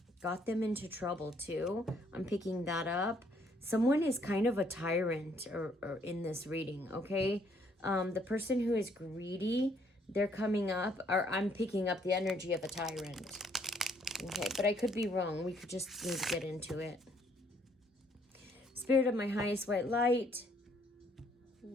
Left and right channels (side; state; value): both; normal; correlation 0.67